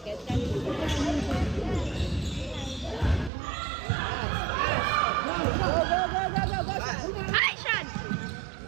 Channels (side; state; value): left; drops out; at 3.3 s